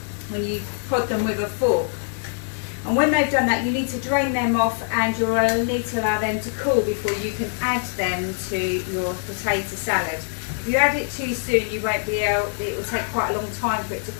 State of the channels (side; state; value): right; silent; 63 dB below the other